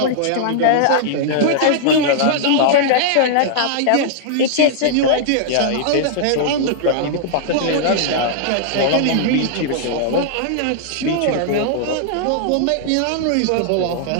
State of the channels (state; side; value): different; both; correlation -0.01